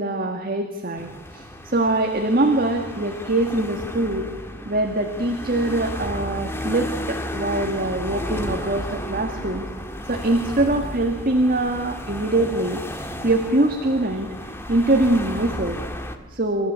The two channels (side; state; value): both; normal; correlation 0.35